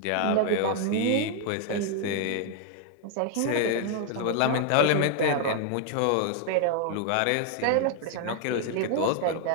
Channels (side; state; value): both; different; correlation 0.00